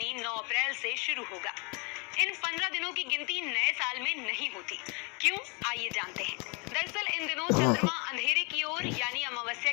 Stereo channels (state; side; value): quieter; right; 32.6 dB